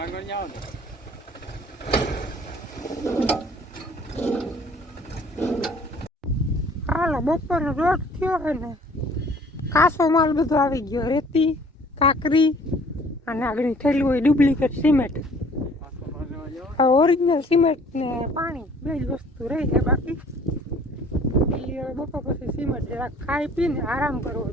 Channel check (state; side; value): normal; both; correlation 0.54